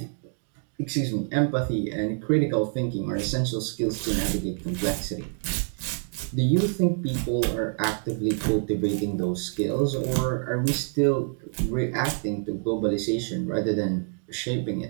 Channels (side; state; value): left; silent; 56 dB below the other